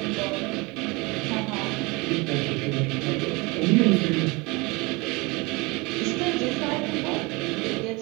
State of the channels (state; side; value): quieter; left; 25.5 dB